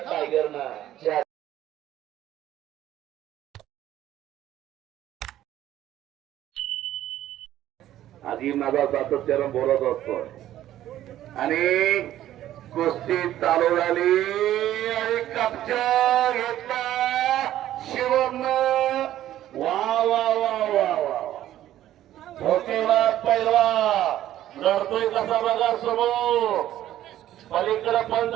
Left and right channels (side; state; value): left; quieter; 12.9 dB